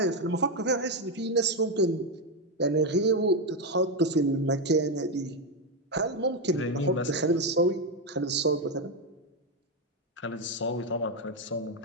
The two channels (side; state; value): both; normal; correlation 0.06